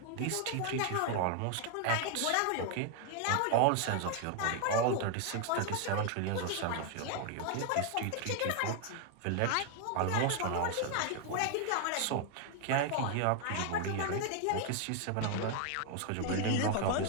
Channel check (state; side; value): different; both; correlation 0.00